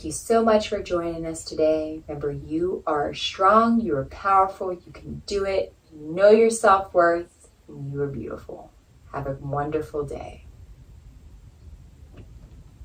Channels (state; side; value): identical; both; correlation 1.00